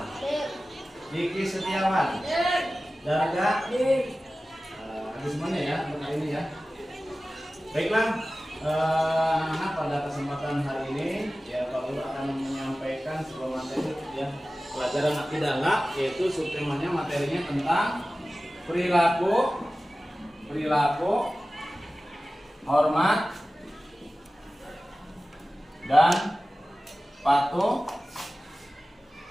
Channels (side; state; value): both; normal; correlation 0.96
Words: Diki Setiawan, Darga, habis semuanya ya untuk hari ini ya. Baiklah, anak-anak, pada kesempatan hari ini ya Pak Guru akan menyampaikan sebuah materi ya, pelajaran akidah, yaitu subtemanya materinya tentang perilaku, hormat, dan patuh